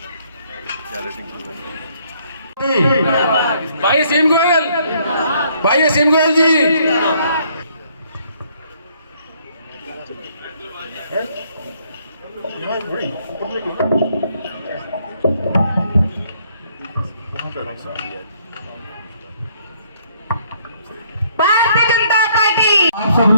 भाई असीम गोयल, भाई असीम गोयल जी। भारतीय जनता पार्टी। आप सब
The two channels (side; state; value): both; inverted; correlation -0.66